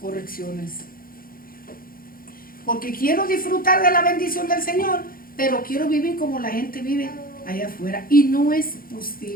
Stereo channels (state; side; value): late; right; 0.42 ms